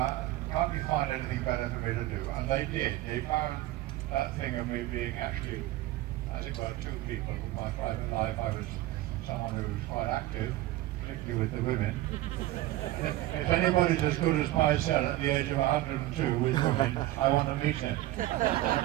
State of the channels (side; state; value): left; quieter; 16.2 dB